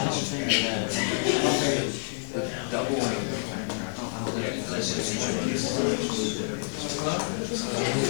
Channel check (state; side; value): silent; right; digital silence